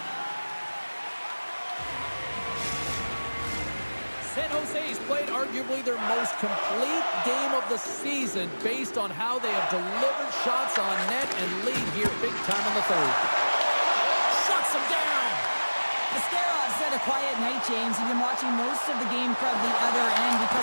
San Jose's played arguably their most complete game of the season based on how they have delivered shots on net and lead here big time in the third. Shuts them down. Ascarov's had a quiet night, James. He's been watching most of the game from the other end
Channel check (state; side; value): inverted; both; correlation -1.00